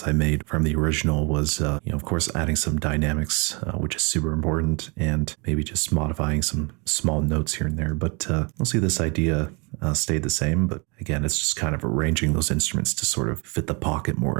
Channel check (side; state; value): left; quieter; 31.4 dB